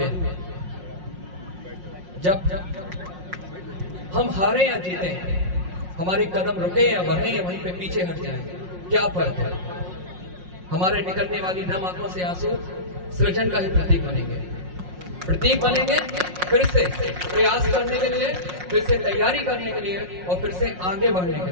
जब हम हारे या जीते, हमारे कदम रुके या बढ़े या वहीं पे पीछे हट जाए, क्या फर्क है? हमारे निकलने वाली नम आंखों से आंसू सृजन का ही प्रतीक बनेंगे, फिर से प्रयास करने के लिए, फिर से तैयारी करने के लिए और फिर से आगे बढ़ने के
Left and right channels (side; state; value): left; late; 5.5 ms